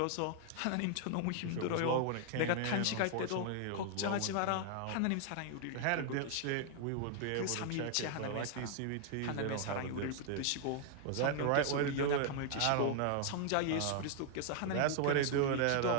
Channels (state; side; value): different; both; correlation 0.00